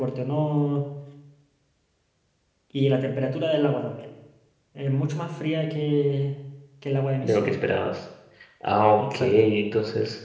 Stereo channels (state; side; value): identical; both; correlation 1.00